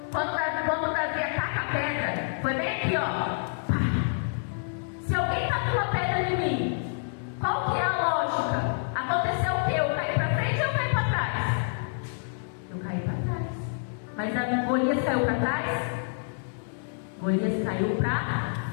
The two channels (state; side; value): silent; right; 59 dB below the other